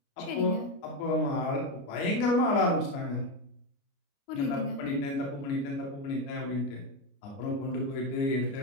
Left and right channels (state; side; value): late; right; 29 ms